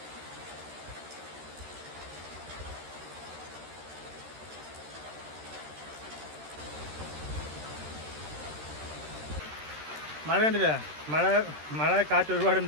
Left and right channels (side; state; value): left; late; 13 ms